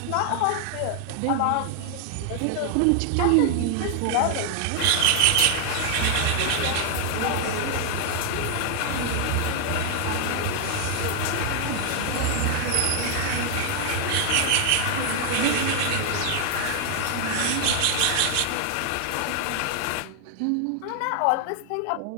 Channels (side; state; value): both; different; correlation 0.00